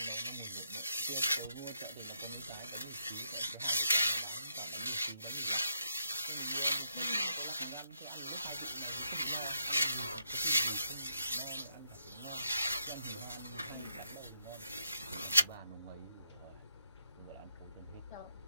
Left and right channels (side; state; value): both; inverted; correlation -0.78